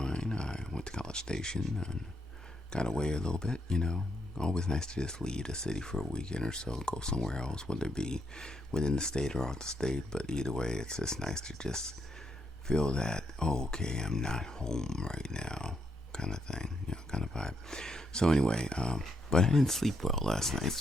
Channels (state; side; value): normal; both; correlation 0.77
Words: I went to College Station and got away a little bit, you know. Always nice to just leave the city for a weekend or so, go somewhere else, whether it be within the state or out the state, but either way, it's just nice to just feel that, oh, okay, I'm not home right now. Kind of thing, you know, kind of vibe. So anyway, but I didn't sleep well last night,